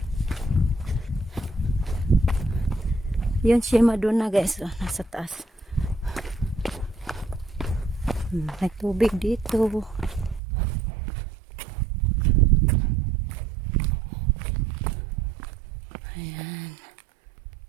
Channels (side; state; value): left; drops out; at 10.4 s